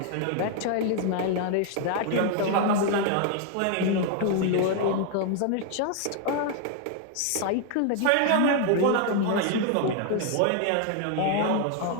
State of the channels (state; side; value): different; both; correlation 0.00